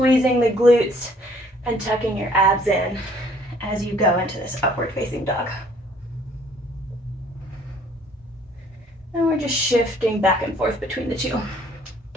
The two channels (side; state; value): both; normal; correlation 0.59